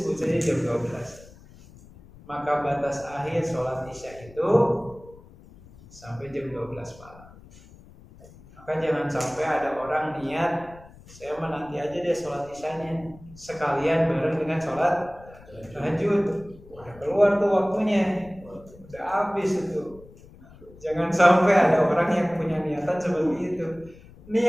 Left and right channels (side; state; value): left; noise; rumble, 22 dB below the sound